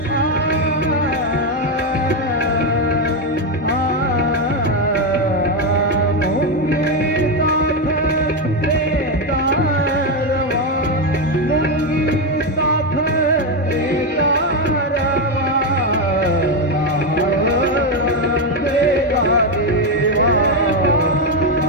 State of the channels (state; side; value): normal; both; correlation 0.07